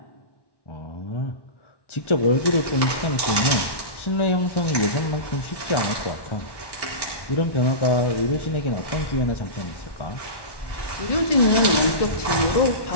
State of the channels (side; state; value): right; late; 1.1 ms